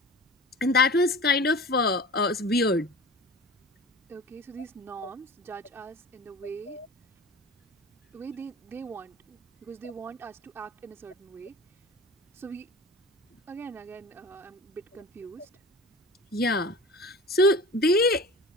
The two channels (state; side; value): normal; both; correlation 0.37